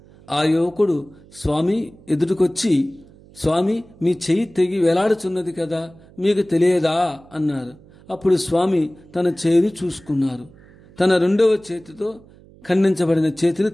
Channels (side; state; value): right; noise; hum, 25 dB below the sound